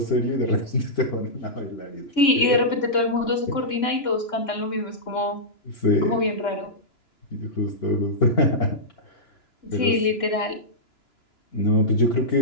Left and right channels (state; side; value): late; right; 2.9 ms